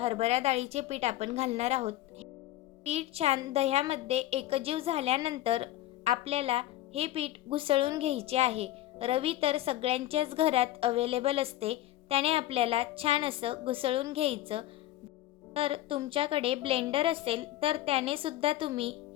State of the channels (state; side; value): quieter; right; 14.9 dB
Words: डाळीचे पीठ आपण घालणार आहोत। पीठ छान दह्यामध्ये एकजीव झाल्यानंतर आपल्याला हे पीठ घुसळून घ्यायचे आहे। रवी तर सगळ्यांच्याच घरात अवेलेबल असते, त्याने आपल्याला छान असं घुसळून घ्यायचं। तर तुमच्याकडे ब्लेंडर असेल तर त्याने सुद्धा तुम्ही